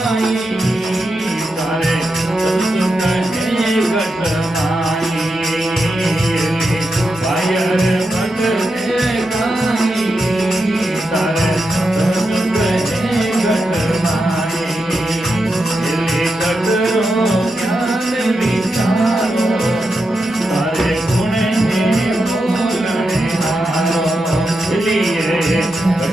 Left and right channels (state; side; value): normal; both; correlation 0.87